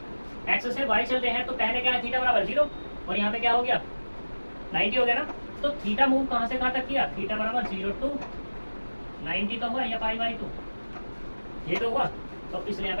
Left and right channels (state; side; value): inverted; both; correlation -1.00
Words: x से y चलते हैं तो पहले क्या है, थीटा बराबर 0, और यहाँ पे क्या हो गया 90 हो गया ना, तो थीटा मूव कहाँ से कहाँ तक किया, थीटा बराबर 0 टू 90 तो हुआ, या पाई बाई 2 ये तो हुआ, तो इसलिए